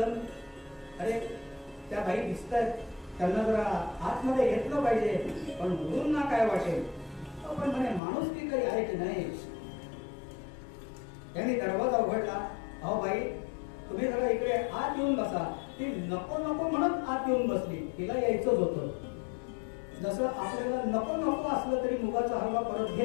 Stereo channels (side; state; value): right; drops out; at 8.0 s